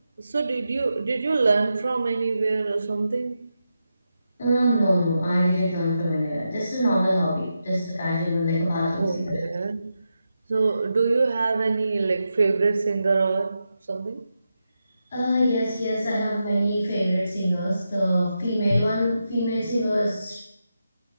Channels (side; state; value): both; inverted; correlation -0.88